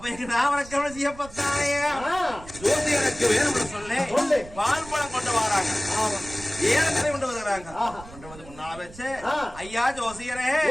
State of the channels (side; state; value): right; noise; rumble, 17 dB below the sound